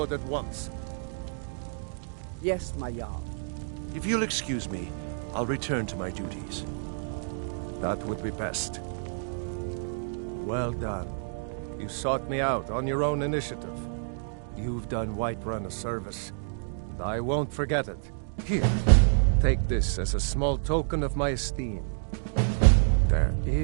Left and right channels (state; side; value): silent; left; digital silence